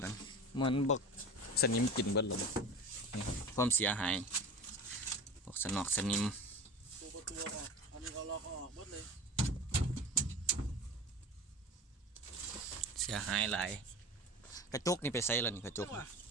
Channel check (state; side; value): normal; both; correlation 0.33